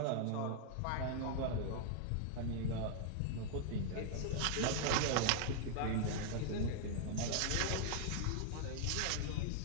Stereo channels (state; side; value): different; both; correlation -0.01